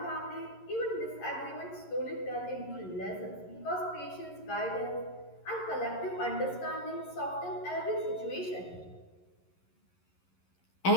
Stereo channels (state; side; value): late; right; 11 ms